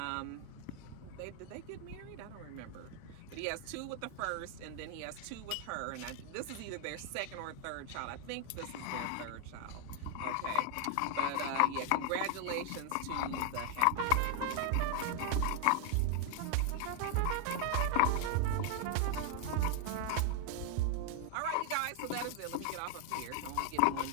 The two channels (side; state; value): both; different; correlation 0.00